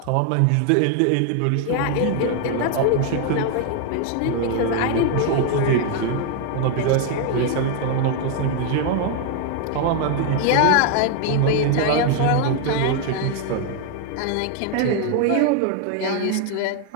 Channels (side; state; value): both; different; correlation 0.00